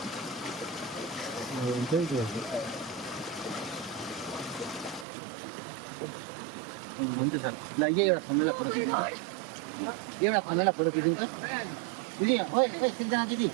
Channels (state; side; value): drops out; left; at 5.1 s